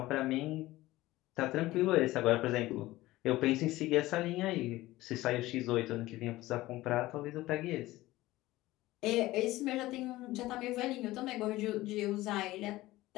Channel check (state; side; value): quieter; right; 17.7 dB